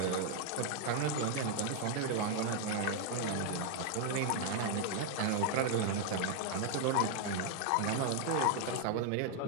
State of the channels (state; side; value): different; both; correlation 0.00